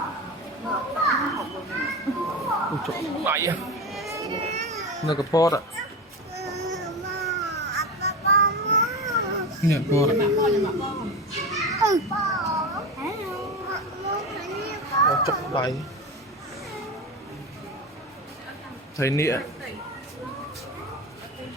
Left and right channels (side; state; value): both; normal; correlation 0.24